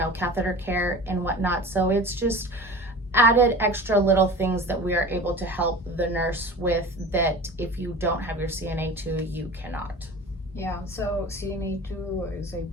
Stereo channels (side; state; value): both; normal; correlation 0.36